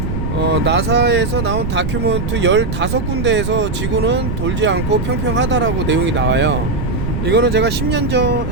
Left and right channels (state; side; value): noise; right; rumble, 3 dB below the sound